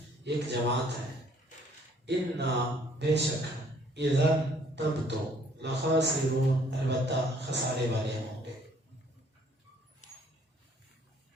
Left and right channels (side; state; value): both; normal; correlation 0.61